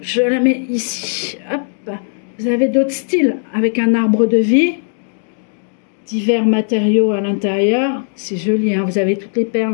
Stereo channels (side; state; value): right; silent; digital silence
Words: la mets ici. Hop. Vous avez d'autres styles avec un arbre de vie. Divers matériaux à l'intérieur, c'est joli, hein. Vous avez toutes les